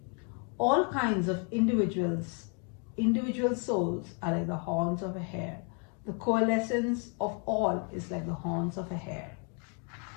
All kinds of individual souls are like the horns of a hare. The coalescence of all is like the horns of a hare.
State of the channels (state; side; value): quieter; right; 38.6 dB